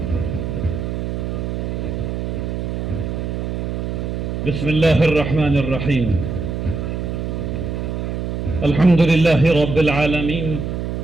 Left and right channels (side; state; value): right; noise; hum, 3 dB below the sound